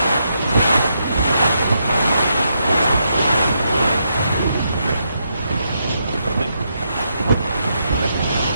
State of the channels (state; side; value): inverted; both; correlation -0.80